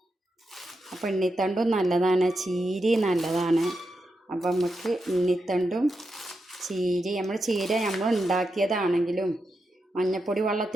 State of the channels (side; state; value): both; normal; correlation 0.86